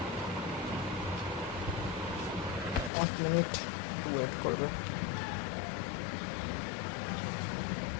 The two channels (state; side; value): drops out; right; at 2.9 s